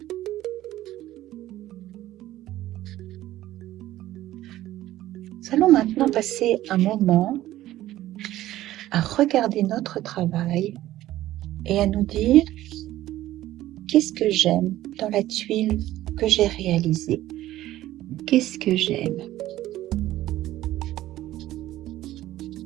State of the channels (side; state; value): left; quieter; 14.7 dB